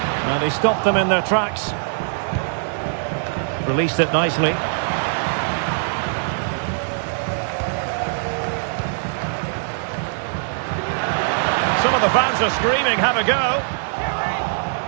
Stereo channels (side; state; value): left; silent; digital silence